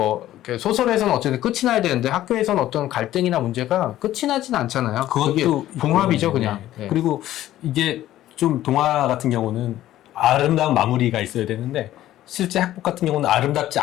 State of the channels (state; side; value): quieter; right; 13.8 dB